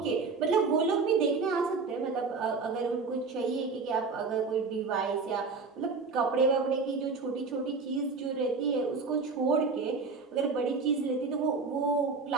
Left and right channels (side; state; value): left; quieter; 4.5 dB